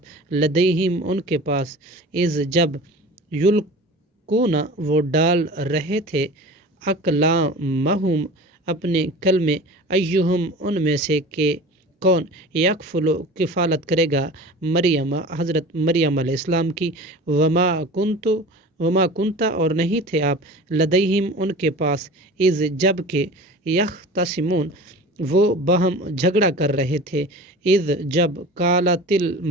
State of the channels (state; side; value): normal; both; correlation 0.38